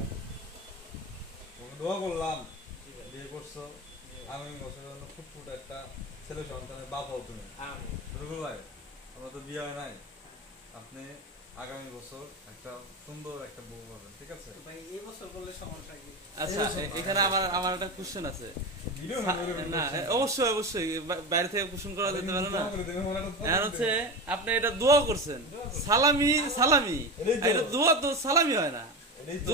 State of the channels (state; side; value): normal; both; correlation 0.23